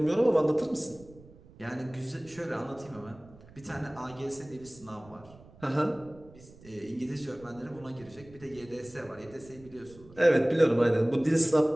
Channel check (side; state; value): right; noise; rumble, 22 dB below the sound